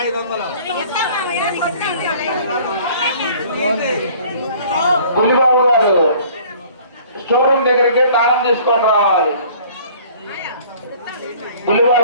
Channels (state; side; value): inverted; both; correlation -0.52